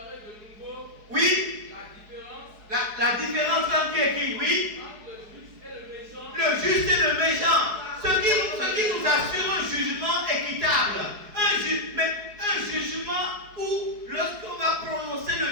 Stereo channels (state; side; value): late; left; 4.7 ms